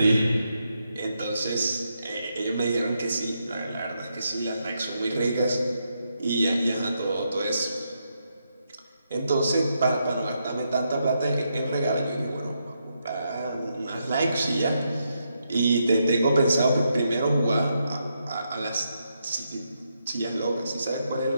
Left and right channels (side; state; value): both; inverted; correlation -0.81